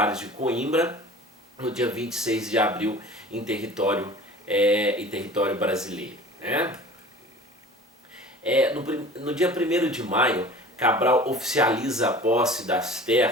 de Coimbra no dia 26 de abril em território brasileiro, né? No dia 1º de maio, Cabral oficializa a posse das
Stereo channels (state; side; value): normal; both; correlation 0.42